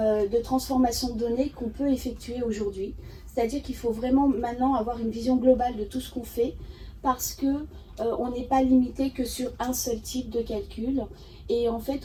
transformation de données qu'on peut effectuer aujourd'hui. C'est-à-dire qu'il faut vraiment maintenant avoir une vision globale de tout ce qu'on fait, parce que on n'est pas limité que sur un seul type de calcul. Et en fait,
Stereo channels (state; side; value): identical; both; correlation 1.00